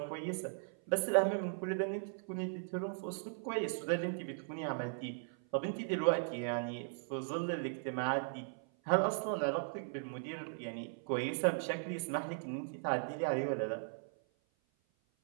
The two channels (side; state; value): left; silent; 52 dB below the other